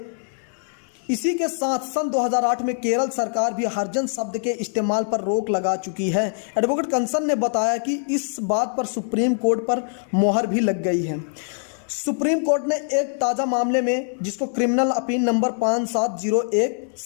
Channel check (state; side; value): silent; right; digital silence